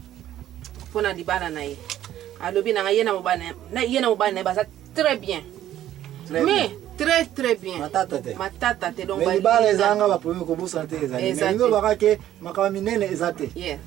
pona libala na ye alobi na yena mobana na baza très bien mais très bien matata te donc libala ezanga ba premier ko busa te ezali mais ngo bakake makama minene ezate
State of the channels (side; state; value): left; quieter; 12.3 dB